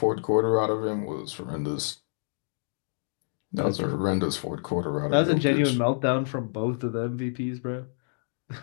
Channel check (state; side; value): silent; right; digital silence